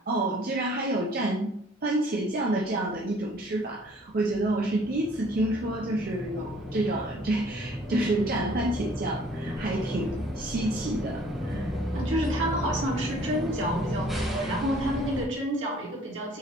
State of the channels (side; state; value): both; normal; correlation 0.56